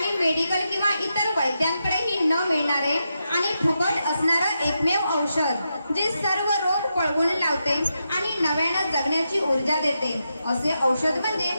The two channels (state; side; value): inverted; both; correlation -0.86